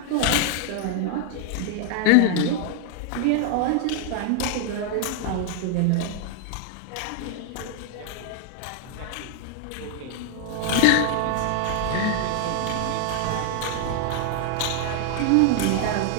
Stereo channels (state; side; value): different; both; correlation 0.00